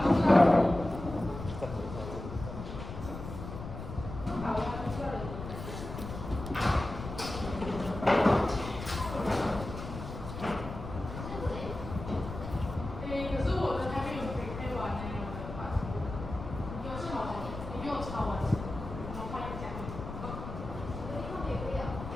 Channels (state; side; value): noise; left; rumble, 9 dB below the sound